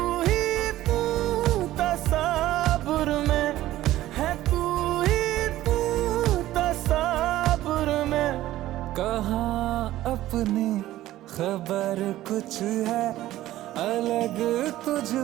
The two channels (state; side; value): quieter; left; 14.9 dB